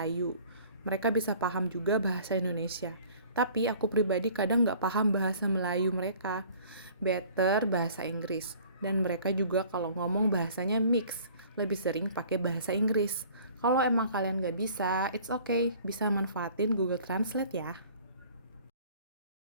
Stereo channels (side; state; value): both; inverted; correlation -0.51